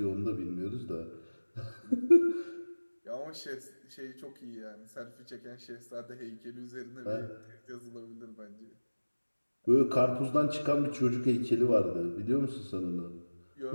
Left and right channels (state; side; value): inverted; both; correlation -1.00